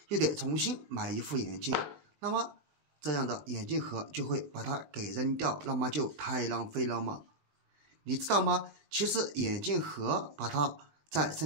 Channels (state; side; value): late; left; 20 ms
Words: 又得重新買一副眼鏡，那麼這樣的眼鏡盒就會把它給扔掉，那麼就太浪費了嘛。你知道嗎？其實眼鏡盒把它在